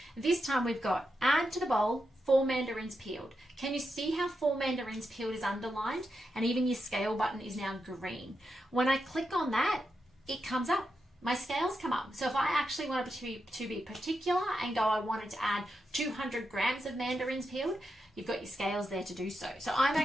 This time we've got add to the bowl 4 mandarins peeled. Can you see how 4 mandarins peeled is underlined? And even your scale button is now green. When I click on that, it comes up. My scales come up. So if I actually wanted to be particular and go, I wanted to add 200 grams of mandarins peeled, you've got your scales there to do so. So I'm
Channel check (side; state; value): both; normal; correlation 0.86